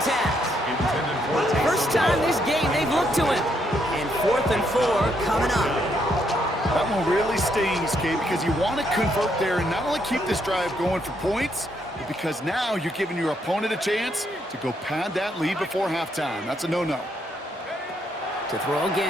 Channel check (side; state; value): both; normal; correlation 0.75